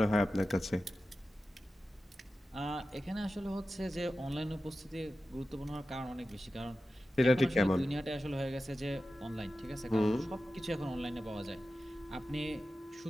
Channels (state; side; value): normal; both; correlation 0.93